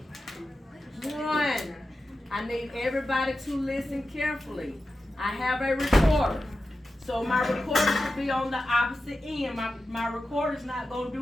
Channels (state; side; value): normal; both; correlation 0.92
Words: 1. I need everybody to listen carefully. I have a recorder. So my recorder should be on the opposite end. My recorder's not gonna